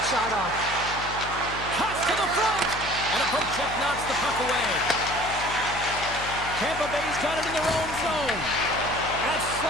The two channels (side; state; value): left; noise; hum, 12 dB below the sound